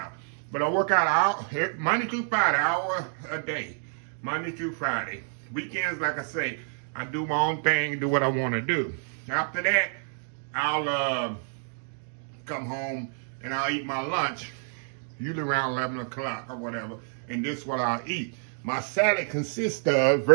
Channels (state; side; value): silent; left; 58 dB below the other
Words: But I work out Monday through Friday, hour a day. Monday through Friday. Weekends, like I say, I do my own thing, do what I want to do. After that, I'll come home and I'll eat my lunch, usually around 11 o'clock or whatever, and this is what I'll eat. My salad consists of,